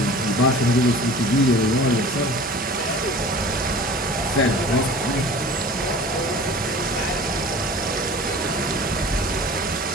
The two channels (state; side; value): normal; both; correlation 0.42